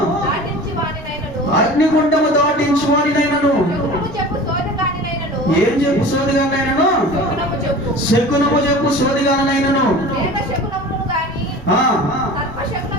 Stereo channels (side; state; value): both; normal; correlation 0.38